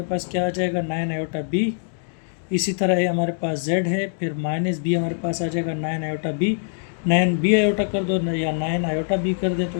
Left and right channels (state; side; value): silent; right; digital silence